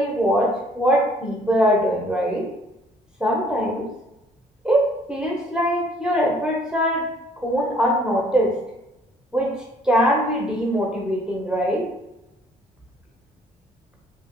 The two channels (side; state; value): both; normal; correlation 0.60